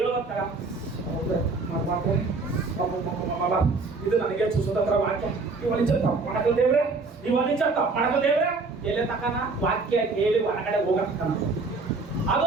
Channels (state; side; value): quieter; left; 3.9 dB